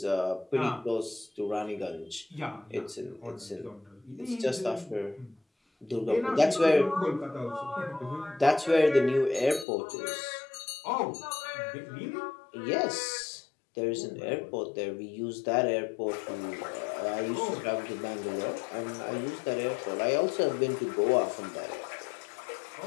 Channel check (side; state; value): right; drops out; at 9.7 s